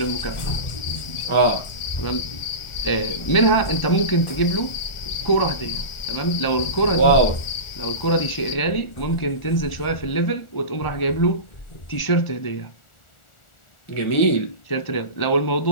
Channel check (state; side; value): late; right; 1.4 ms